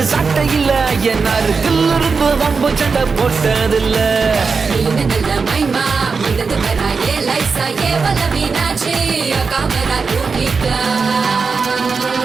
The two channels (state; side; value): quieter; left; 4.9 dB